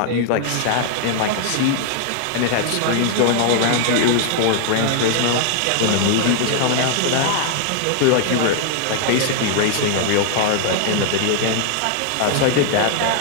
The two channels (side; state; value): both; different; correlation -0.01